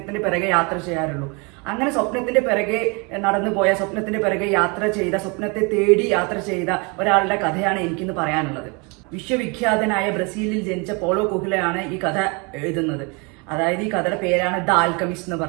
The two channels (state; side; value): quieter; left; 30.8 dB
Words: പിറകെ യാത്ര ചെയ്യാറുള്ളൂ. അങ്ങനെ സ്വപ്നത്തിന്റെ പിറകെ നടന്നു പോയ, സ്വപ്നത്തിന്റെ പിറകെ യാത്ര ചെയ്ത, സ്വപ്നത്തെ തേടി യാത്ര ചെയ്ത ഒരാളുടെ കഥയാണ് എനിക്കിന്ന് പറയാനുള്ളത്. വിശ്വവിഖ്യാതനായ ബ്രസീലിൽ ജനിച്ച പോളോ കൊഹ്ലയാണ് ഈ കഥ എഴുതുന്നത്. അതായത് ഈ കഥയുടെ പേരാണ് ദ ആൽക്കമിസ്റ്റ് എന്ന്